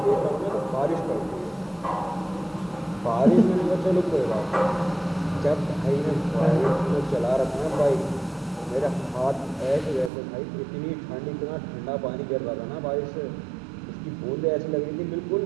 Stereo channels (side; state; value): left; drops out; at 10.1 s